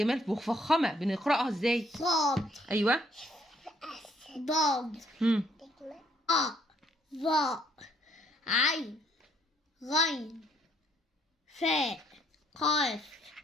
مفخمه، بنقراها ازاي؟ صاد، ايوه. ضاد، أ، ظاء، عين، غين، فاء، قاف،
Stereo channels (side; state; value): both; normal; correlation 0.67